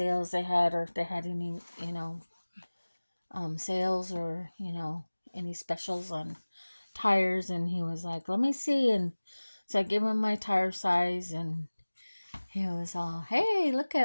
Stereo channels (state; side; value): inverted; both; correlation -1.00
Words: they had, or if they had any, sales, or any specials on tires. And he was like, "Let me see." And so I gave him my tire size, and he was all, "Hey, look